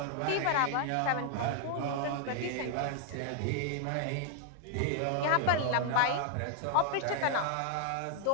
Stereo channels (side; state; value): both; different; correlation 0.00